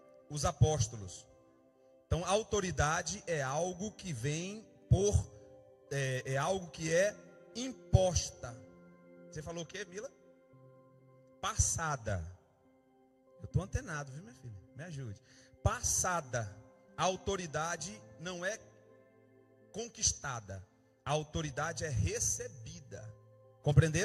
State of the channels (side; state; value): both; identical; correlation 1.00